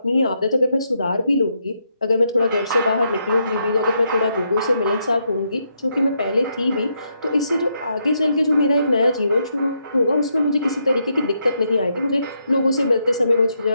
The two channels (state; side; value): inverted; both; correlation -0.79